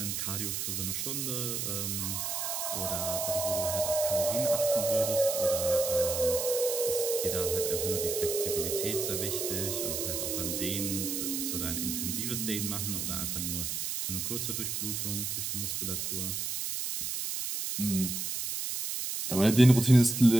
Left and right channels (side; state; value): right; noise; hiss, 2 dB below the sound